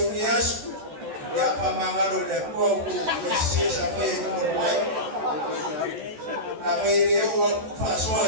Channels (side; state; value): left; late; 14 ms